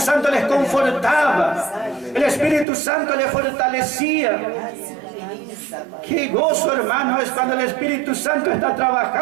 les confortaba, el Espíritu Santo les fortalecía. Qué gozo, hermano, es cuando el Espíritu Santo está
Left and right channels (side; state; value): left; drops out; at 2.7 s